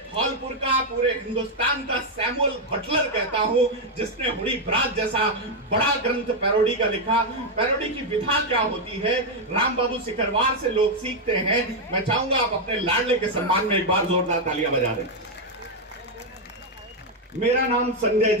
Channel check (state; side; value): normal; both; correlation 0.01